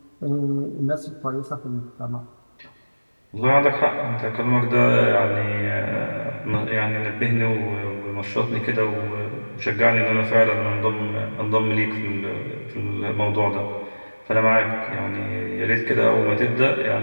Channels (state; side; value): inverted; both; correlation -1.00